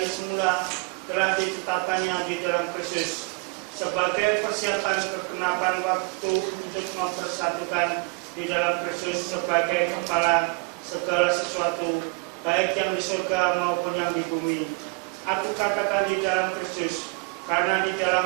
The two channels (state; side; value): quieter; left; 31.5 dB